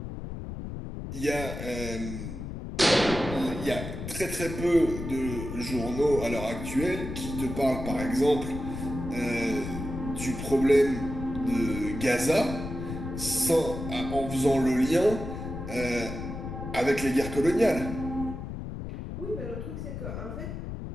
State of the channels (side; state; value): left; noise; rumble, 7 dB below the sound